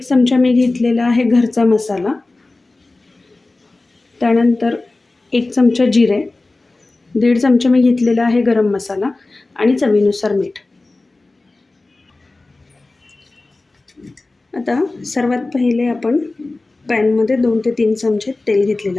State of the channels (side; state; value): right; quieter; 3.2 dB